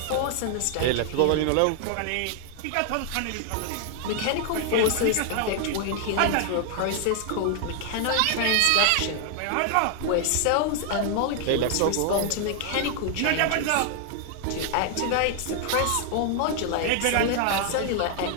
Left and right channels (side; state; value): both; different; correlation 0.00